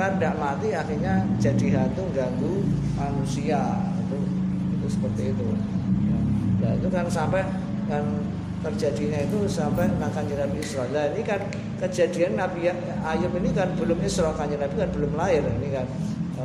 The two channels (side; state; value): both; identical; correlation 1.00